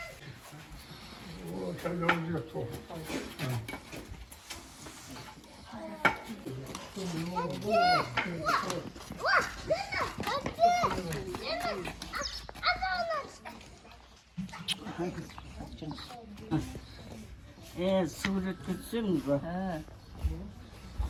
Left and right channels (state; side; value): identical; both; correlation 1.00